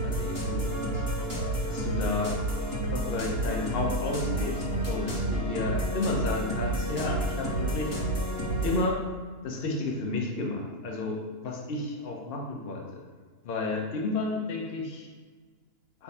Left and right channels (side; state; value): left; late; 2.9 ms